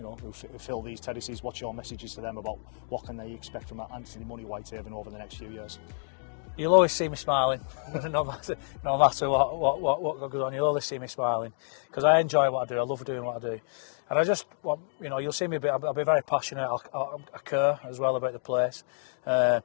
fill these terraces? What's your messages to them about what can they expect from Anthony Money Whitehaven over the next few years? You'll always see me smiling, no matter what goes on. You'll always see me smiling because I enjoy what I do. I love doing what I do, and I just want you'll see me. I'll be very passionate. I care as well about the place, and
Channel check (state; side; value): silent; right; digital silence